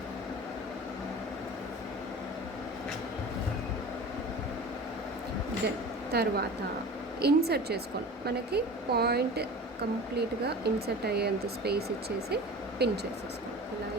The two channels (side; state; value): both; normal; correlation 0.36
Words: then తర్వాత ఇన్సర్ట్ చేసుకోండి. మనకి పాయింట్ కంప్లీట్గా ఇన్సర్ట్ అయ్యేంత స్పేస్ ఇచ్చేసి పిన్ చేసేసుకోండి. ఇలా